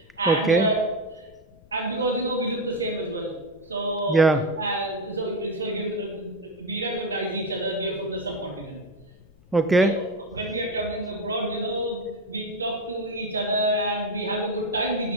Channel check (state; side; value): noise; left; rumble, 26 dB below the sound